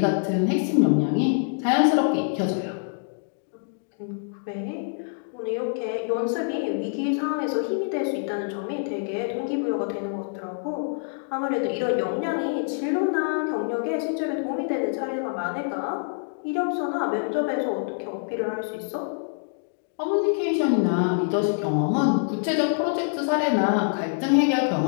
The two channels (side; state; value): right; silent; digital silence